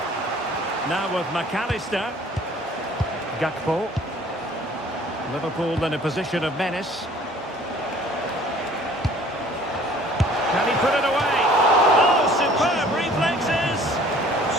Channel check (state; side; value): normal; both; correlation 0.53